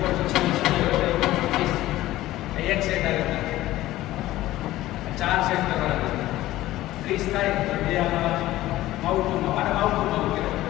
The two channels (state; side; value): quieter; right; 15.8 dB